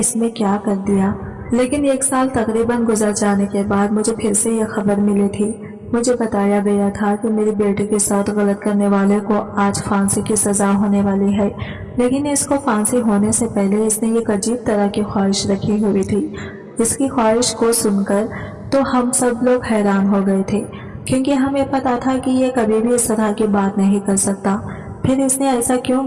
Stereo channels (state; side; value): identical; both; correlation 1.00